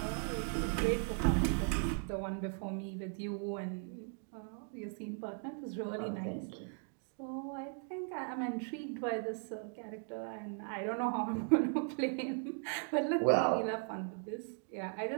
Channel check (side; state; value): left; silent; 53 dB below the other